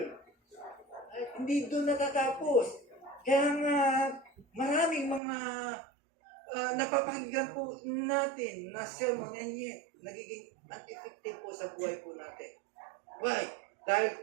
Ay, hindi doon natatapos. Kaya nga, maraming mga napapakinggan po natin na sermon and yet nagiging ineffective po sa buhay po natin. Why?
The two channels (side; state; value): left; drops out; at 5.2 s